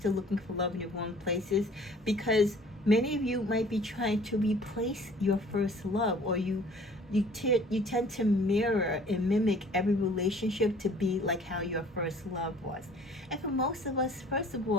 looking for love in the wrong places, because many of you might be trying to replace your first love, or you tend to mirror and mimic every relationship to be like how your first love was. And for most of us, first of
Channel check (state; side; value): normal; both; correlation 0.52